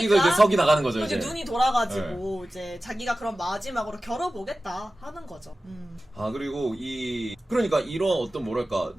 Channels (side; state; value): both; normal; correlation 0.95